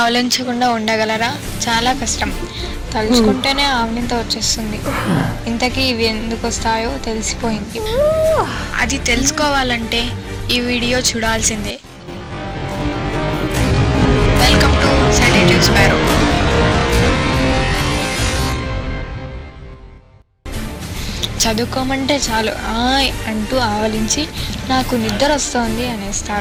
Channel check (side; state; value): both; identical; correlation 1.00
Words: ఉండగలరా? చాలా కష్టం. తలుచుకుంటేనే ఆవలింత వచ్చేస్తుంది. ఇంతకీ ఇవి ఎందుకు వస్తాయో తెలిసిపోయింది. అది తెలుసుకోవాలంటే ఈ వీడియో చూడాల్సిందే. Welcome to sedative sparrow. చదువుకోమంటే చాలు ఆయ్ అంటూ ఆవలించి నాకు నిద్ర వస్తోంది